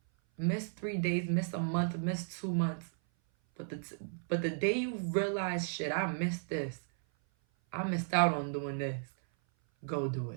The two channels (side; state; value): left; silent; 55 dB below the other